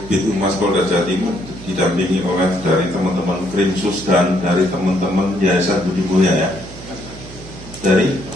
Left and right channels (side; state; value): right; noise; hum, 16 dB below the sound